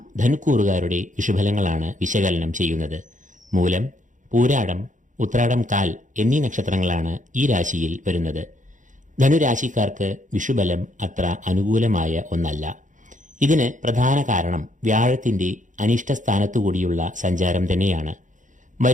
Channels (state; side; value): late; left; 0.37 ms